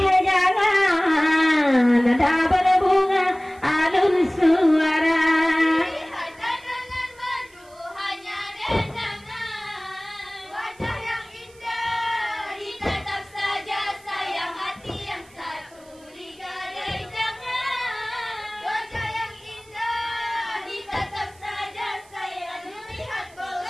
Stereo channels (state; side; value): noise; right; hiss, 27 dB below the sound